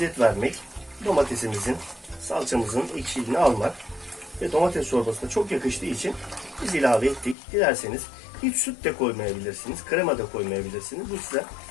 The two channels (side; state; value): right; drops out; at 7.4 s